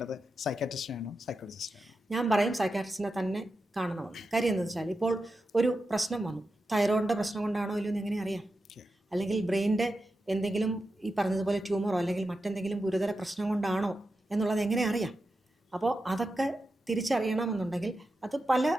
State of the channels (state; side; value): normal; both; correlation 0.90